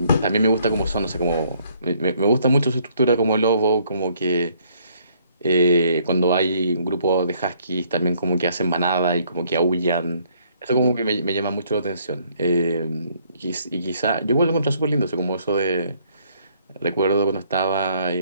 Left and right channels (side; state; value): both; inverted; correlation -0.65